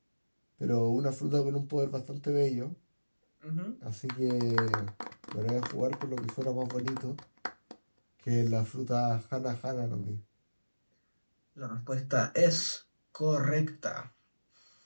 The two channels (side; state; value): both; inverted; correlation -1.00